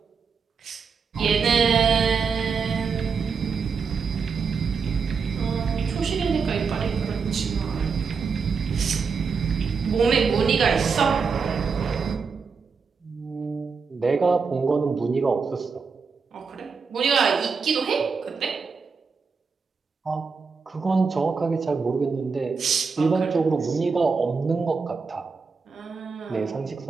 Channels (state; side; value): quieter; left; 5.3 dB